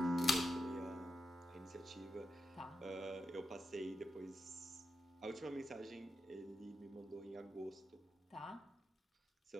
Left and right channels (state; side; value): normal; both; correlation 0.87